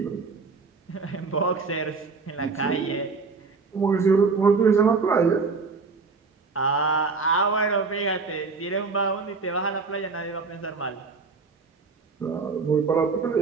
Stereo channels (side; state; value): left; quieter; 4.5 dB